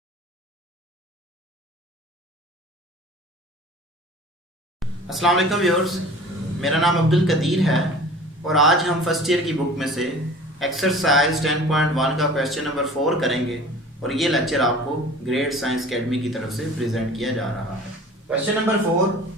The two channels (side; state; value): both; normal; correlation 0.43